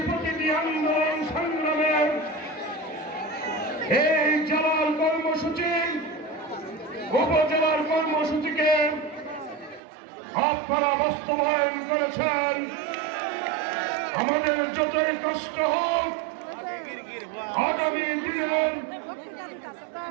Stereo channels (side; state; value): left; drops out; at 9.8 s